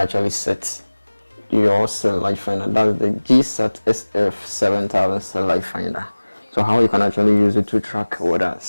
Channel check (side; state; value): both; inverted; correlation -1.00